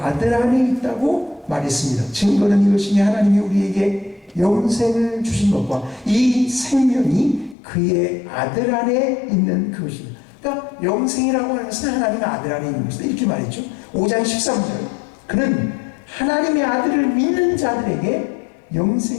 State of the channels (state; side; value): drops out; right; at 7.6 s